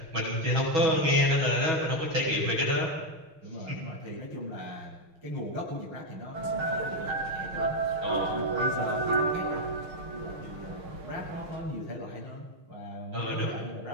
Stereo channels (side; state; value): left; late; 6.5 ms